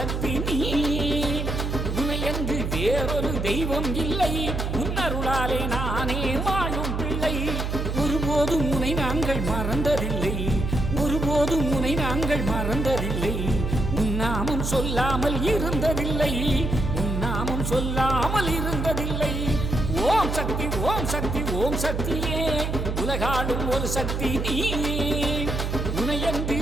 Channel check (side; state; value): right; noise; hum, 2 dB below the sound